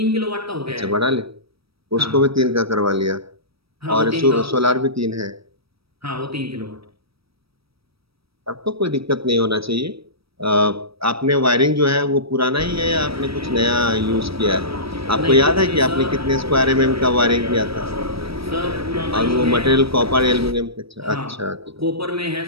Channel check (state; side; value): late; left; 0.76 ms